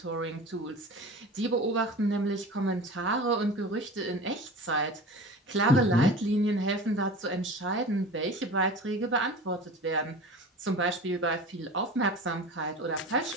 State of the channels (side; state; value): both; normal; correlation 0.35